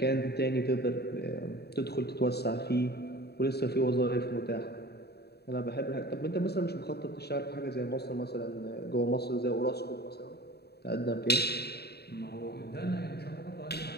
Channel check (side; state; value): right; late; 0.47 ms